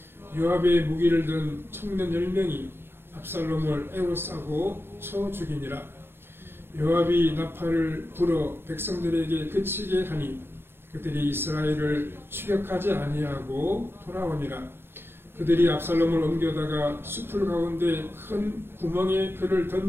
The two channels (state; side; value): late; left; 0.11 ms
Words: 요압의 무기를 든 청년 10명이 압살롬을 에워싸고 쳐 죽이니라. 요압이 나팔을 불어 백성들에게 그치게 하니 그들이 이스라엘을 추격하지 아니하고 돌아오니라. 그들이 압살롬을 옮겨다가 수풀 가운데 큰 구멍에 그를